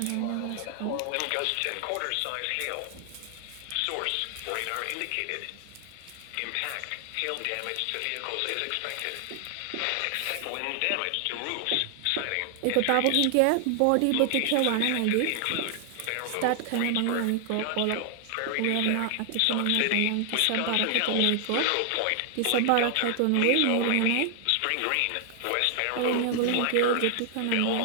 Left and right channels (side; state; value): both; different; correlation 0.00